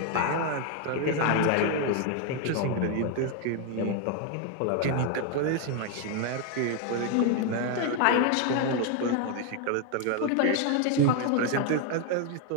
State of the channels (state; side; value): different; both; correlation 0.01